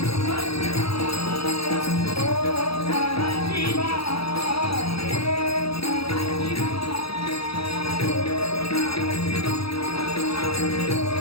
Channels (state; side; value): late; right; 0.76 ms